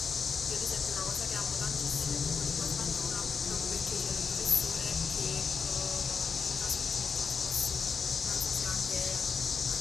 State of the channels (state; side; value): quieter; right; 5.7 dB